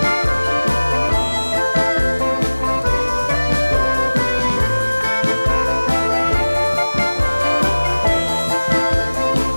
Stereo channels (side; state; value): both; inverted; correlation -1.00